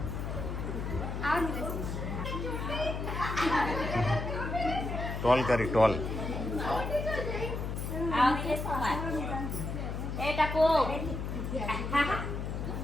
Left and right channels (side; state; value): left; noise; hum, 4 dB below the sound